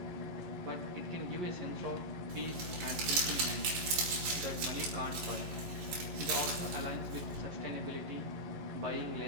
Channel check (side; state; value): left; late; 11 ms